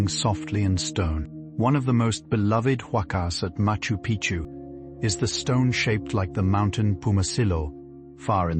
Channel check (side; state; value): both; identical; correlation 1.00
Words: softly in stone. One of the most beloved huacas at Machu Picchu is the stone shaped like the mountain Pumasillo, far in